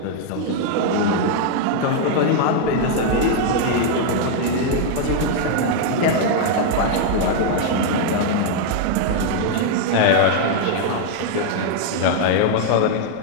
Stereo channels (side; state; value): both; different; correlation 0.00